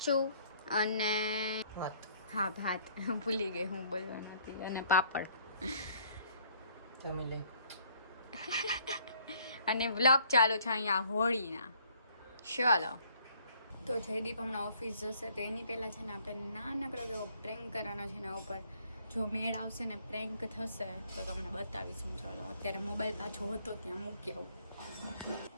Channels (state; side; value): inverted; both; correlation -0.62